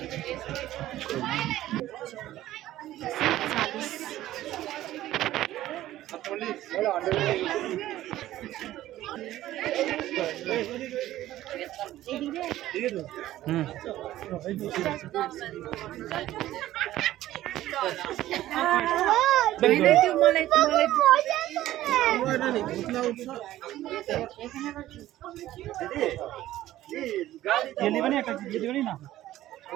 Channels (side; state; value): left; quieter; 14.4 dB